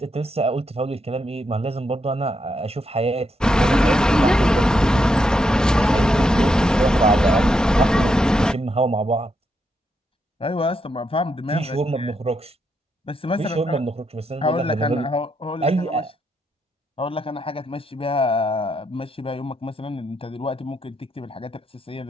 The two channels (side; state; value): both; normal; correlation 0.80